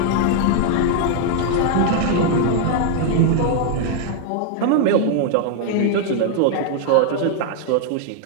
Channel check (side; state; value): both; different; correlation 0.00